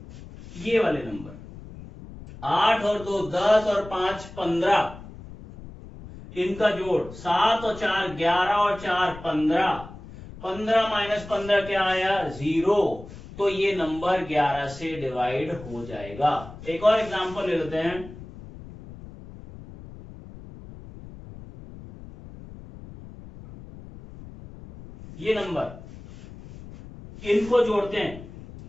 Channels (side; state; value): left; noise; rumble, 16 dB below the sound